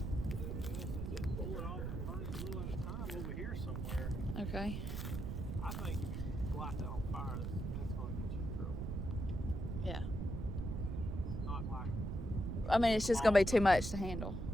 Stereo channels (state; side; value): noise; right; rumble, 3 dB below the sound